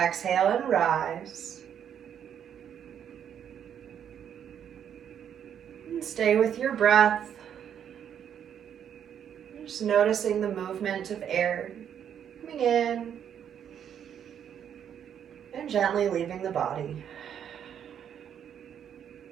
and rise. And stay with your breath. Just noticing the movement of air coming in and gently leaving the body.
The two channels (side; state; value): left; quieter; 8.9 dB